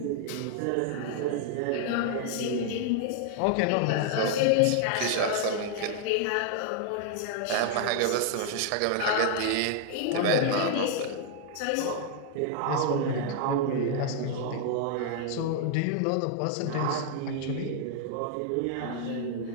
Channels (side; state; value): both; different; correlation 0.00